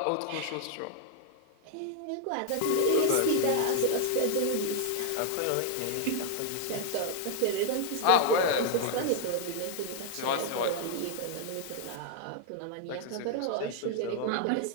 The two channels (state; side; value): different; both; correlation 0.00